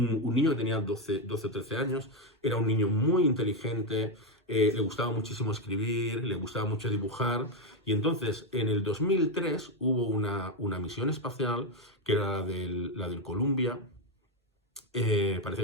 niño que tenía 12 o 13 años, era un niño muy inteligente, le gustaba muchísimo escribir, le gustaba mucho dibujar, y entonces en el 2003 hubo una misión espacial, que era la del Columbia. Parece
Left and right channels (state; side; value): normal; both; correlation 0.07